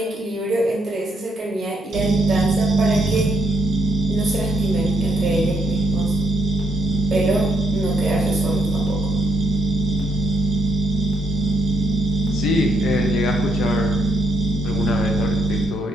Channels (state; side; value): normal; both; correlation 0.74